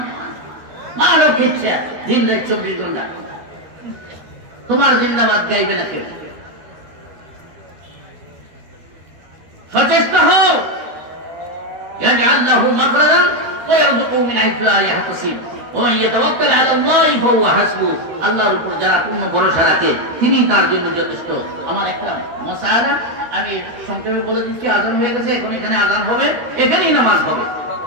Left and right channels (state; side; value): late; left; 13 ms